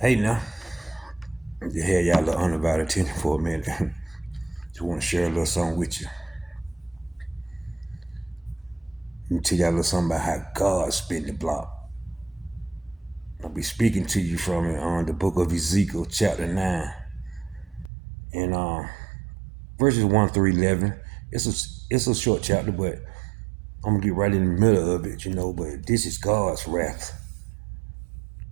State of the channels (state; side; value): drops out; left; at 17.9 s